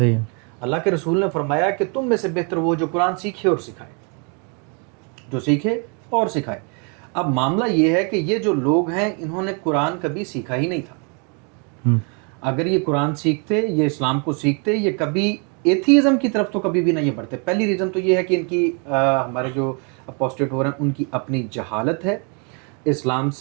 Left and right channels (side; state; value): left; quieter; 36.7 dB